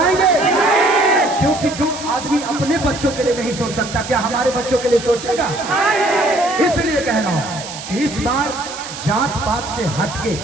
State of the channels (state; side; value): noise; right; hiss, 11 dB below the sound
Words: क्योंकि जो आदमी अपने बच्चों के लिए नहीं सोच सकता, क्या हमारे बच्चों के लिए सोचेगा? इसलिए कह रहा हूं कि इस बार जात पात से हटके